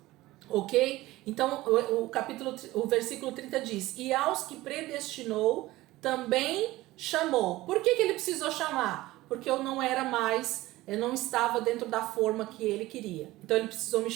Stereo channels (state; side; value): quieter; left; 17.9 dB